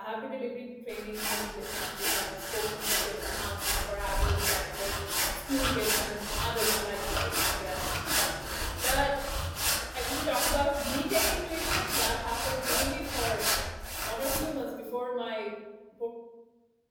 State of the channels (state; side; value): identical; both; correlation 1.00